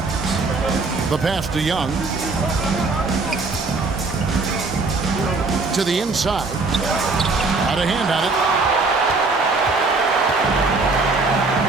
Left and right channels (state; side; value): quieter; left; 3.7 dB